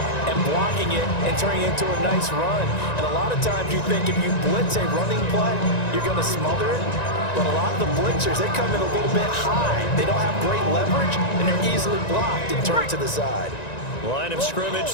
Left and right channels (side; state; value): right; late; 1.9 ms